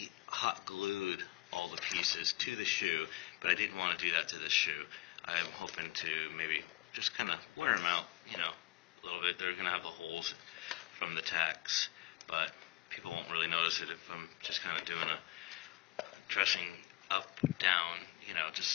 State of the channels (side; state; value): right; quieter; 18.3 dB